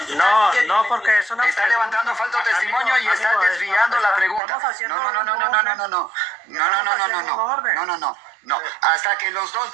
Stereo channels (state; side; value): drops out; left; at 4.4 s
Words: porque es una Está pregunta. levantando falso testimonio y está Amigo, desviando la pregunta. estamos haciendo No. Hasta que los dos